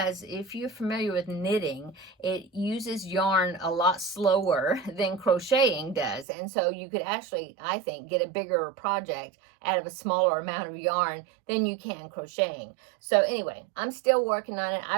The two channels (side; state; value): left; drops out; at 6.2 s